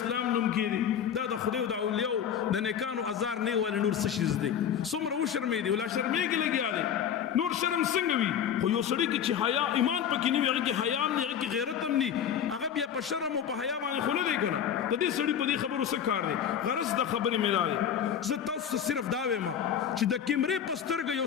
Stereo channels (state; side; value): quieter; right; 8.6 dB